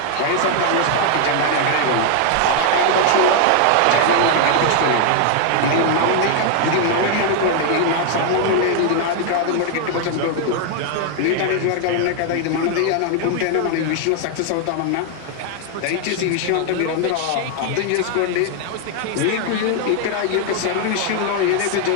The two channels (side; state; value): both; different; correlation 0.00